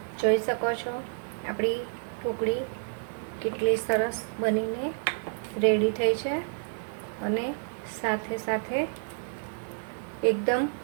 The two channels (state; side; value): silent; left; 58 dB below the other